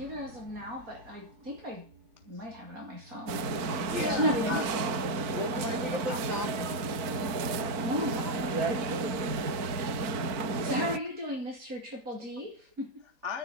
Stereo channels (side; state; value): left; late; 4.4 ms